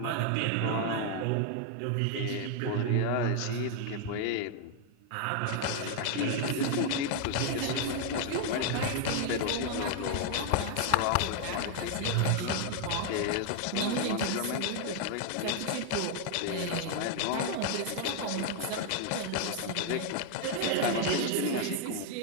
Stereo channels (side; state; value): both; different; correlation 0.00